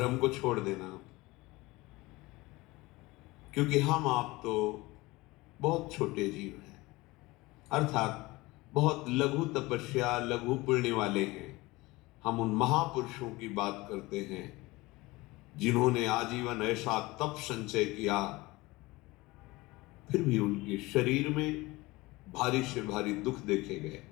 को छोड़ देना। क्योंकि हम आप तो बहुत छोटे जीव हैं, अर्थात बहुत लघु तपस्या, लघु पुण्य वाले हैं। हम उन महापुरुषों की बात करते हैं जिन्होंने आजीवन ऐसा तप संचय किया, फिर भी उनके शरीर में भारी से भारी दुख देखे गए।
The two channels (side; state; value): right; quieter; 21.3 dB